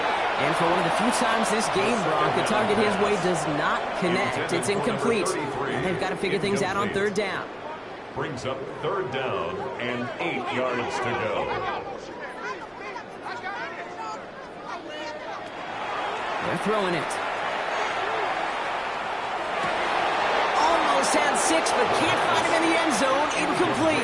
And for one of the few times this game, Brock, the target his way does not connect. It's incomplete. And they've got to figure things out on 3rd down. Brings up 3rd down and 8 yards to go. They're throwing it. Almost had 6, but can't find him in the end zone. Incomplete.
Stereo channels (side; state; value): both; identical; correlation 1.00